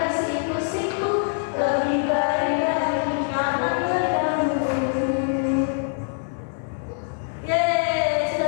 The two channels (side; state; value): right; silent; 63 dB below the other